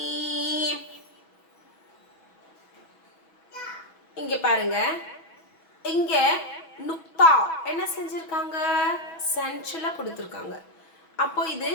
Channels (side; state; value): right; late; 6.1 ms